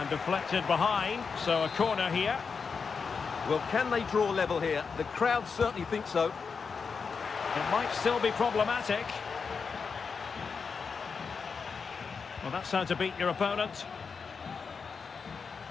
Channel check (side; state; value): right; quieter; 5.4 dB